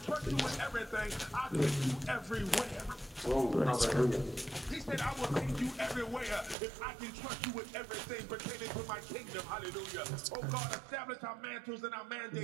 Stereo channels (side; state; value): left; drops out; at 6.6 s